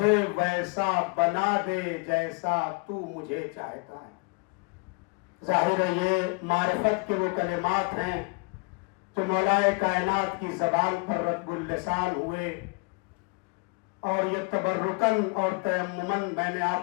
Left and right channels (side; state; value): right; quieter; 30.8 dB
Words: ویسا بنا دے جیسا تو مجھے چاہتا ہے. ظاہر ہے یہ معرفت کے وہ کلمات ہیں جو مولا کائنات کی زبان پر رطب اللسان ہوئے، اور یہ تبرکن اور تیممن میں نے